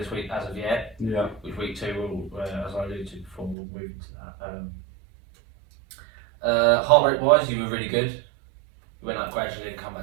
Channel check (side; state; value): left; drops out; at 3.6 s